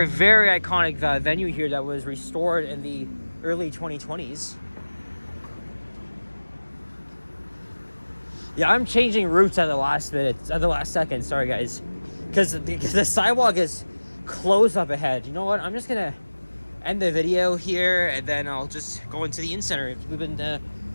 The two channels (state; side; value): inverted; both; correlation -1.00